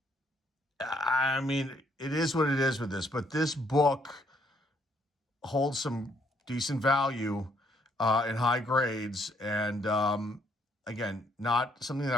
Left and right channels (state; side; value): normal; both; correlation 0.69